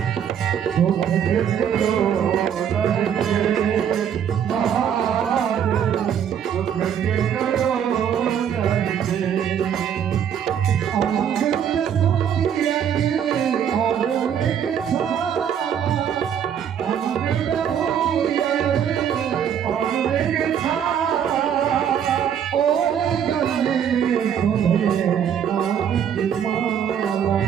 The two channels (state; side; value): quieter; left; 8.7 dB